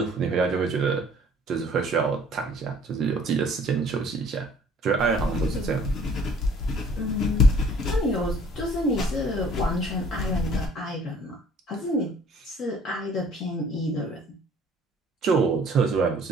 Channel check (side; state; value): both; normal; correlation 0.55